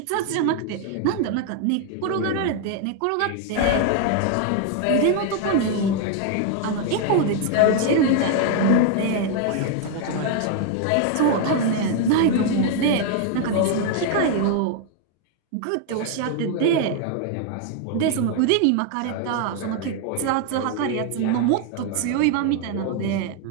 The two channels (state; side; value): different; both; correlation 0.00